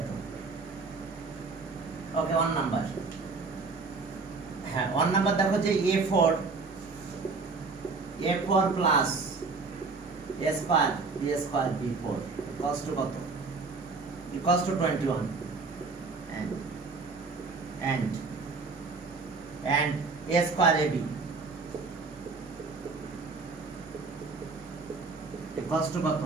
Okay, 1 number. হ্যাঁ 1 নাম্বার দেখো যে a4 plus a square b square b4 equals to কত? Equals to 21 and a square ab equals to কত?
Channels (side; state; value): left; quieter; 4.2 dB